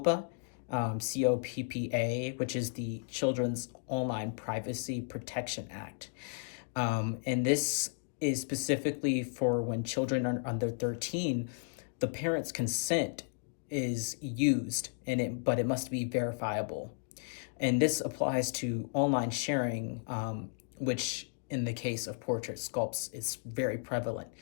COPPA, which is the Children's Online Privacy Protection Act. And this is specifically for when children are under 13, the parent's consent is used, but it must be verifiable. And this applies to online sharing, which in the case of portrait sculpts is very prevalent.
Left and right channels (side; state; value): right; silent; digital silence